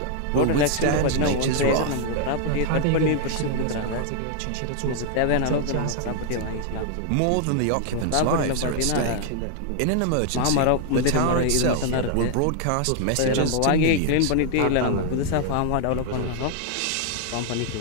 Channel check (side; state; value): both; different; correlation 0.00